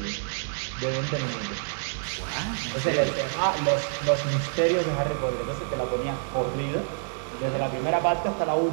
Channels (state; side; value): silent; left; digital silence